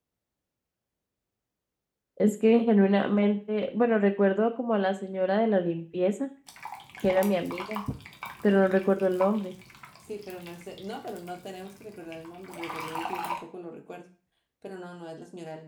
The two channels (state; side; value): identical; both; correlation 1.00